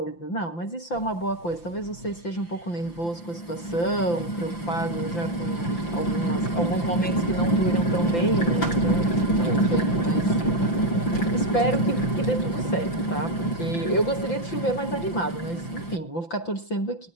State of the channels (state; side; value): late; right; 5.9 ms